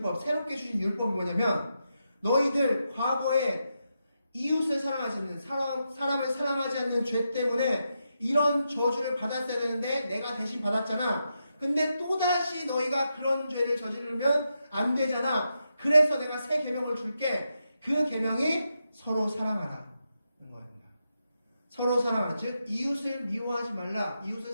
새롭게 주신 율법이 뭐냐면 너희들 과거에 이웃을 사랑하지 않는 사람을 사랑하지 않는 죄 때문에 이런 저주를 받았어야 되는데 내가 대신 받았잖아. 근데 또다시 너희가 그런 죄를 저지르면 안 되잖아. 그래서 내가 새 계명을 줄게. 그 계명이 서로 사랑하라는 거입니다. 서로 사랑하라. 즉 이웃을 미워하지 말라. 이웃을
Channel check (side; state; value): both; inverted; correlation -0.85